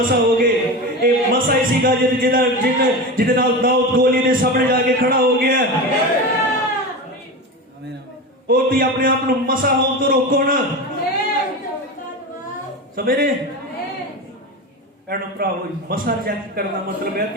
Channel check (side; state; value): both; normal; correlation 0.24